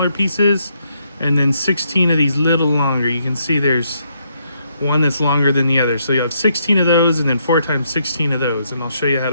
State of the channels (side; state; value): both; inverted; correlation -0.75